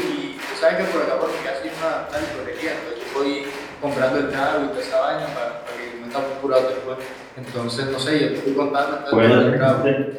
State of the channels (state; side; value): identical; both; correlation 1.00